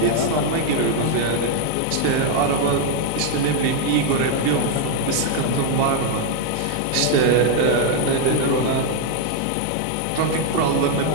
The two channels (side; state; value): both; different; correlation 0.00